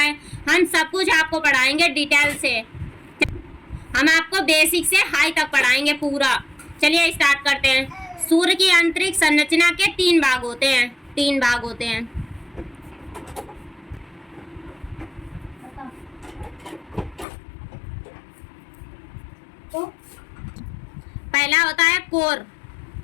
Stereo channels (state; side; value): drops out; right; at 17.2 s